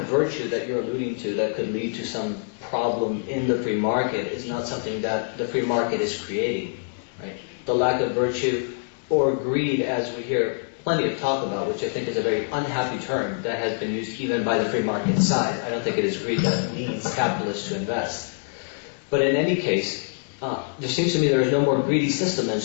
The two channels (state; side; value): silent; right; 62 dB below the other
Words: virtue that you're alluding to that could lead to some problem in the free market is not something that the free market is creating, right? The lack of virtue or greed, as we hear plenty of talk about, which I think is a very unhappy term that has been used even by the free market side. I don't think it is greed that leads capitalists to invest. But in any case, there seems to me there is no more greedy system than